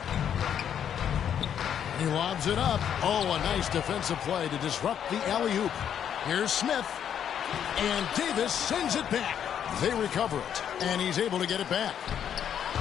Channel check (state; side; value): quieter; right; 9.0 dB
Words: He lobs it up. Oh, a nice defensive play to disrupt the alley-oop. Here's Smith. And Davis sends it back. They recover it. And he's able to get it back.